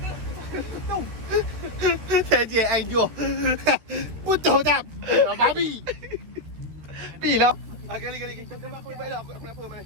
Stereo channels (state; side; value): late; left; 13 ms